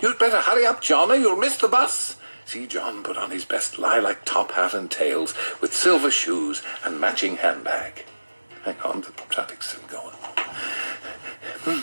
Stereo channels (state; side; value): inverted; both; correlation -1.00